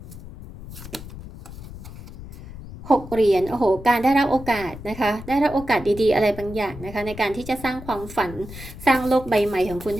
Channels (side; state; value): left; noise; rumble, 14 dB below the sound